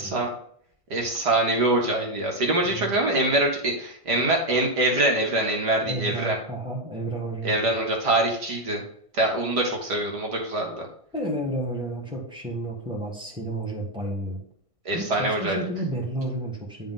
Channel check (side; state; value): left; late; 1.5 ms